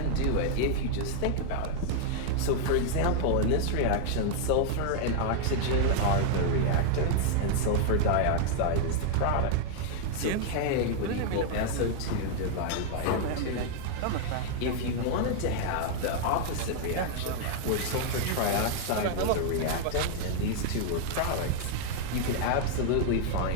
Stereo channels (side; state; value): both; different; correlation 0.00